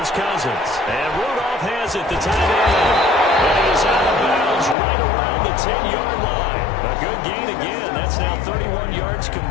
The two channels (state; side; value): drops out; right; at 4.8 s